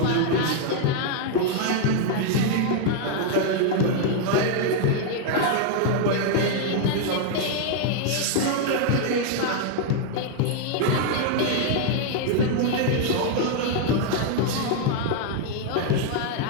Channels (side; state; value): both; different; correlation 0.00